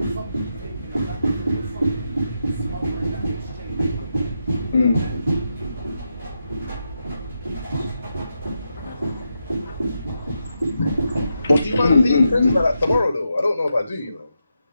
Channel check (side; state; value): both; inverted; correlation -0.85